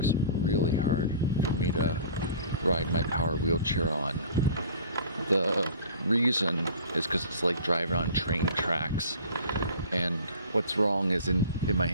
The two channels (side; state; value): both; inverted; correlation -0.44